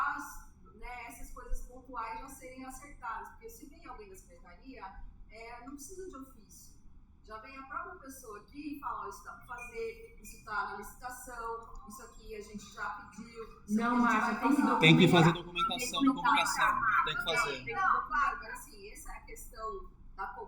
essas coisas pontuais já serem acertadas, porque se vem alguém da secretaria, não precisa de ofício. Já vem a própria pessoa aqui e fala, isso está para fazer, isso está na licitação, isso aqui a gente já pediu. Não, Márcia, tem que fazer documentação de convocação. Tem que fazer. Não, claro, mas assim, essa é a questão da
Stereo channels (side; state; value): both; identical; correlation 1.00